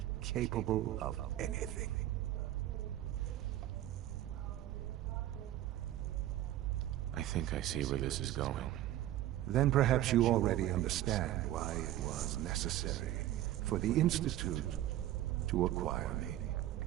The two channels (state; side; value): quieter; left; 13.6 dB